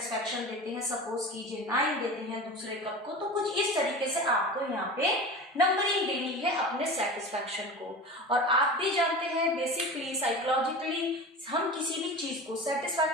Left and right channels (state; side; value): normal; both; correlation 0.32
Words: देते हैं? सपोज कीजिए 9 देते हैं दूसरे कप को। तो कुछ इस तरीके से आपको यहाँ पे नंबरिंग देनी है अपने सेटिस्फैक्शन को। और आप भी जानते हैं बेसिकली साइकोलॉजिकली हम किसी भी चीज को,